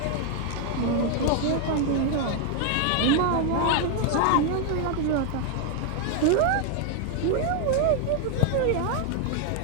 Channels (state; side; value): different; both; correlation 0.00